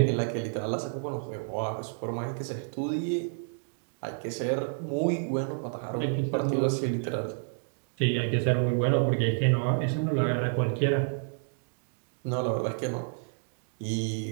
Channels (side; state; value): left; silent; digital silence